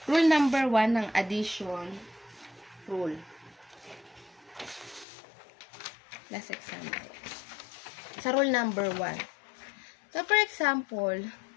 rule number 1 ng addition rule. Last example. Sa rule number 1. So, for example,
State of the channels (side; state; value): right; drops out; at 5.1 s